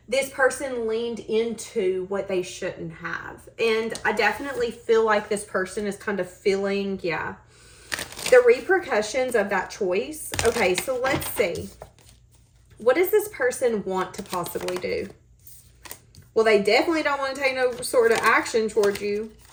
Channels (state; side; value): identical; both; correlation 1.00